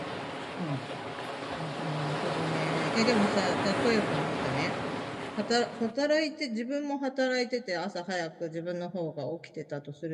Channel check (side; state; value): both; identical; correlation 1.00